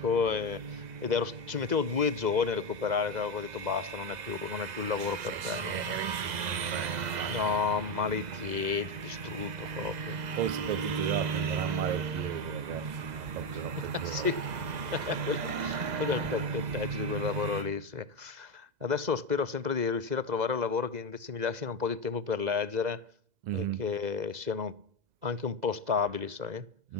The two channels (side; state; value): left; late; 2.0 ms